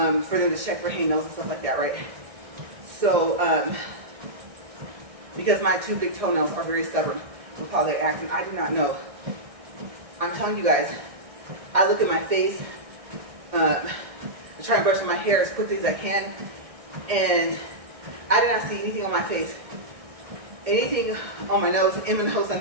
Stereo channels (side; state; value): left; late; 1.6 ms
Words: them to check for hangnails and stuff like that, right? So, because my 2 big toenails are very stubborn with how they act, and I do not know. I'm telling you guys, I look at my face, I try and brush my hair as quickly as I can, and I did not see anything on my face. Anything on my nose, in my nose, I